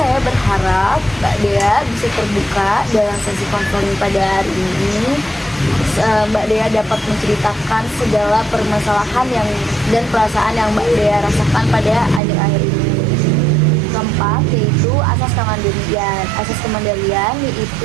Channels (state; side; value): drops out; left; at 12.2 s